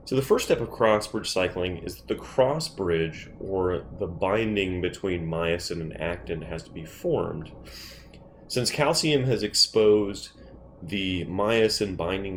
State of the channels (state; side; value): identical; both; correlation 1.00